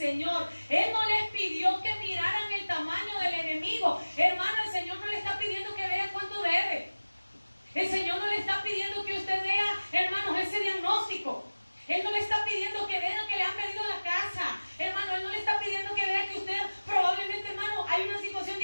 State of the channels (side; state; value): both; inverted; correlation -1.00